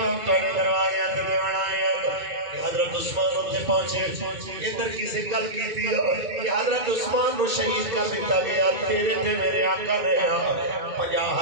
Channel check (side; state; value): left; late; 2.2 ms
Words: کرنے دروازے اندر دیوانا ہے حضرت عثمان ہوتے پہنچے ادھر کسی گل کی تھی کہ حضرت عثمان کو شہید کر دیتا گیا تیرے تھے میرے آقا نے